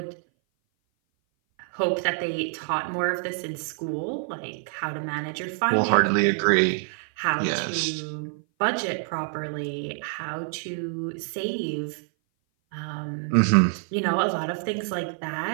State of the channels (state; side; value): silent; left; 57 dB below the other